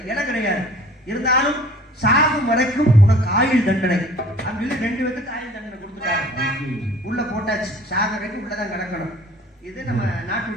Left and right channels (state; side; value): normal; both; correlation 0.49